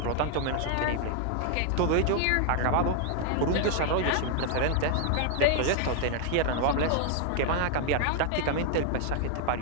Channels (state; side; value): different; both; correlation 0.00